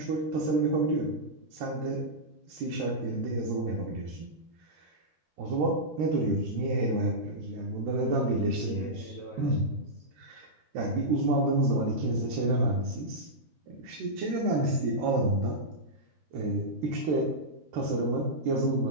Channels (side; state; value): left; late; 13 ms